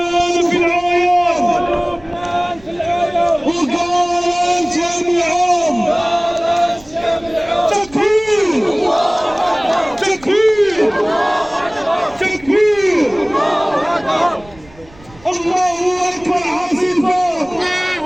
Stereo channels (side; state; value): right; noise; rumble, 24 dB below the sound